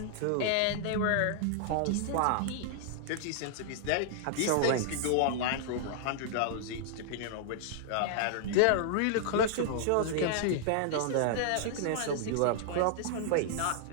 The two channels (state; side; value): different; both; correlation -0.01